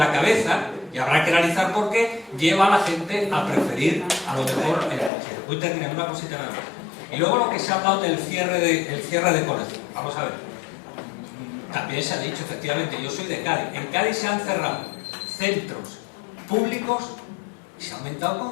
cabeza, y habrá que analizar por qué, lleva a la gente a preferir a lo mejor el colegio. Voy terminando una cosita nada más. Y luego lo que se ha hablado del cierre de colegios. Vamos a ver. También se ha dicho, efectivamente, yo soy de Cádiz. En Cádiz se han cerrado centros públicos y se ha aumentado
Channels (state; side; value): drops out; right; at 5.1 s